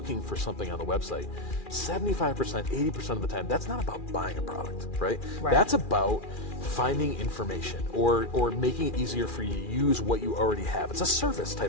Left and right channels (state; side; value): late; right; 2.4 ms